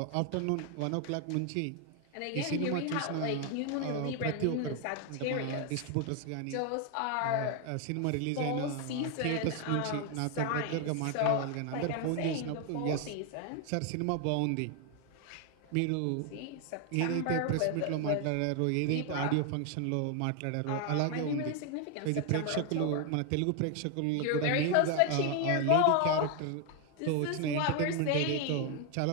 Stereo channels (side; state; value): both; different; correlation 0.01